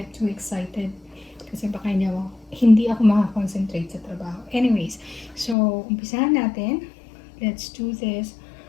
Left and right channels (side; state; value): right; drops out; at 5.6 s